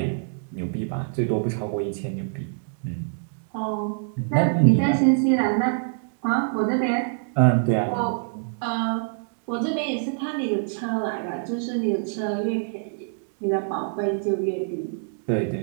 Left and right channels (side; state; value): left; silent; digital silence